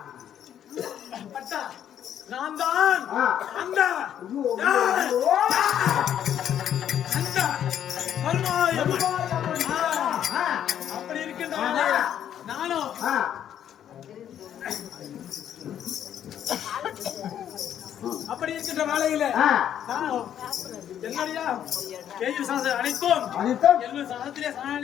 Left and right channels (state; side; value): quieter; right; 10.0 dB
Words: பட்டா நான் தான் அந்த அப்படி இருக்கின்ற நானும் அப்படி இருக்கின்ற வேலையில என்னுடைய கேள்வி சாதம் அனைத்தும் என்னுடைய சாதத்திலே